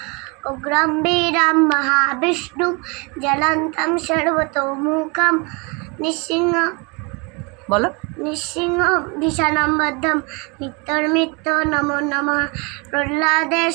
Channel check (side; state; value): left; quieter; 30.2 dB